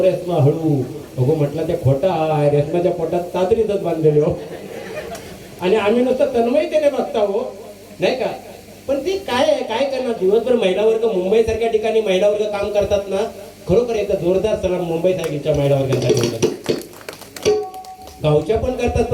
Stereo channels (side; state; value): both; identical; correlation 1.00